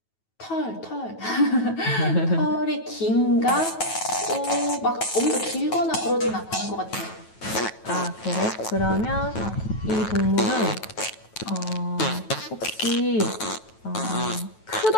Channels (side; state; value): right; late; 9.2 ms